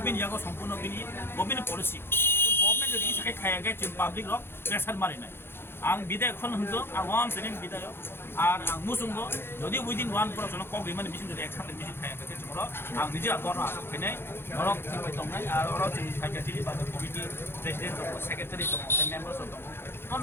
यागो सम्पूर्ण बिनि गभर्नमेंट पलिसि गभर्नमेंट जुदि साखाय खायाखै जों पाब्लिक रक प्रेसार मारिनाय आं बिदाय खन हंजो आं वाम सेनिन बिदाय आर आं मुसुंगो जुदि उइदिन 1 पर्सन कगै माने बिसिन जुदि एक्साम बिसिन खायाखै जोंरो आं निजे आगरनो आसा फैनाय रक थिबाय दंनाय आर अरो जों साइकेट्रि बाजार कमिटि प्रेसिडेन्ट दङ सेक्रेटारि दङ मेम्बार्स दङ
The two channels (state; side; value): late; right; 0.11 ms